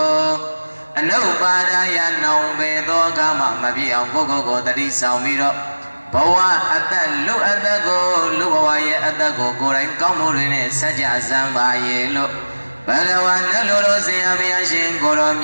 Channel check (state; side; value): inverted; both; correlation -1.00